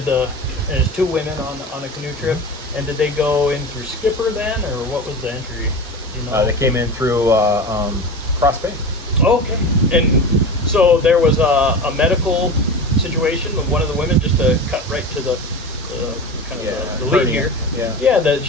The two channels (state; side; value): normal; both; correlation 0.29